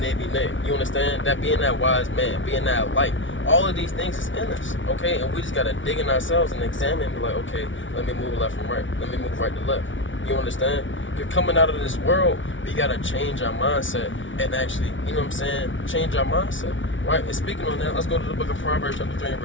be nay. You understand? That being that wise man, being that light. All of these things is in us. Okay? And we just got to dig in ourselves and examine and be like, okay, let me move left from right. Let me move right to left. You understand? Because coming out of this world, we got to change our mindset and actually, you know what I'm saying, change our mindset. Right? And speaking on that, let's go to the book of Proverbs chapter 3 and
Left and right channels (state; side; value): late; right; 0.56 ms